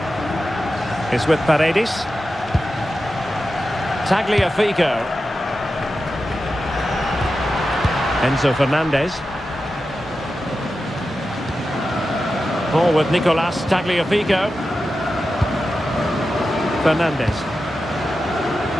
It's with Paredes. Tagliafico. Enzo Fernandez. Ball with Nicolas Tagliafico. Fernandez.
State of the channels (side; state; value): both; normal; correlation 0.91